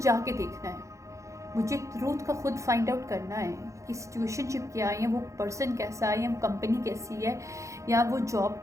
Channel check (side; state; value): left; late; 0.15 ms